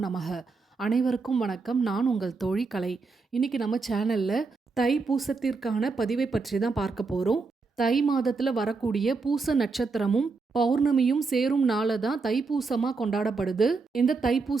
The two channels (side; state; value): left; quieter; 4.3 dB